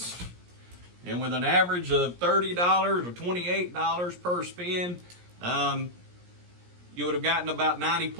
and with an average of $30 or $28 per spin, you would have gotten about 90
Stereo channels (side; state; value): left; late; 17 ms